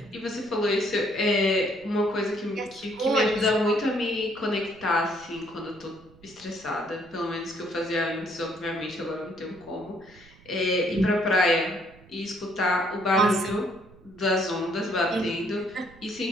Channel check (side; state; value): right; noise; rumble, 25 dB below the sound